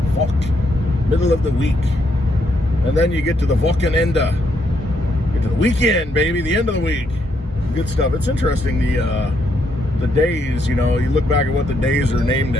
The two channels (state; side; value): normal; both; correlation 0.75